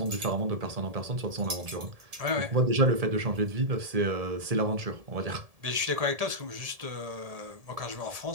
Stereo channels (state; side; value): late; left; 1.7 ms